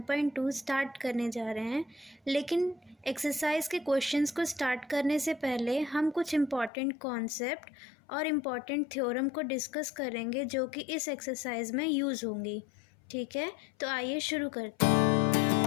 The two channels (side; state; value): right; drops out; at 6.7 s